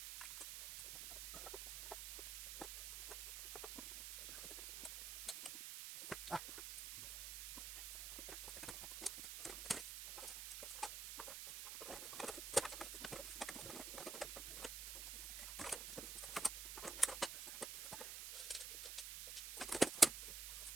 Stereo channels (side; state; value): right; noise; hiss, 5 dB below the sound